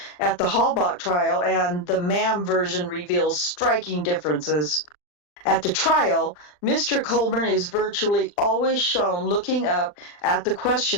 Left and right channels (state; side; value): late; right; 40 ms